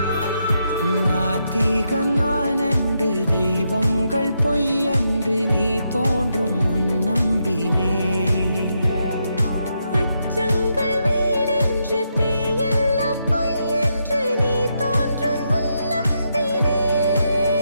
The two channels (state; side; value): inverted; both; correlation -0.81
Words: நாத்திகன் நான் என்று தெய்வங்கள் பொய் என்று நீ தோன்றும் முன் நம்பினே. அச்சங்கள் வீடென்று தேயெல்லாம் பொய் என்று நீ தோன்றும் முன் நம்பினே.